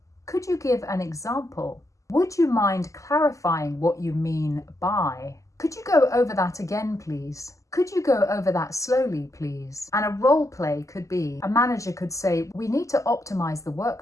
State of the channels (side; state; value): right; late; 0.16 ms